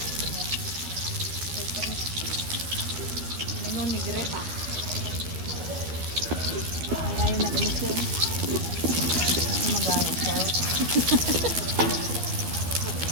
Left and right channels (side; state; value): left; late; 12 ms